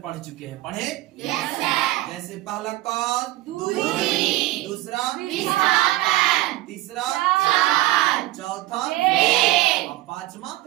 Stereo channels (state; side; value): quieter; left; 17.4 dB